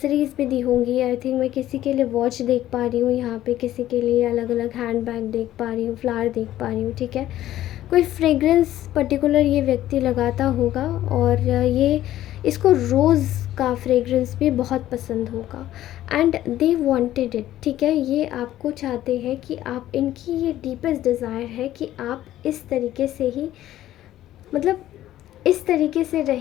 भी दी होंगी। आई थिंक मैं किसी के लिए वॉच देख पा रही हूँ यहाँ पे, किसी के लिए अलग अलग हैंड बैग देख पा रही हूँ, फ्लावर देख पा रही हूँ। ठीक है, कोई फ्रेगरेंस पर्टिकुलर ये व्यक्ति लगाता होगा, और ये इसको रोज़ का फ्रेगरेंस भी बहुत पसंद होगा, एंड दे वांटेड इट। ठीक है, ये आपको चाहते हैं कि आप, इनकी ये डीपेस्ट डिज़ायर है कि आप इस तरीके से ही, मतलब इस तरीके से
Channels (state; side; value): quieter; right; 13.5 dB